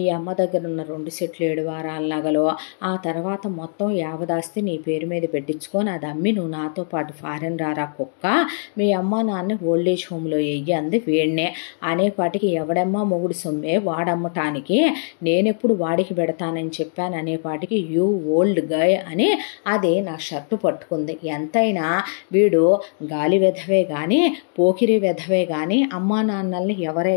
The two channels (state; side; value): silent; right; digital silence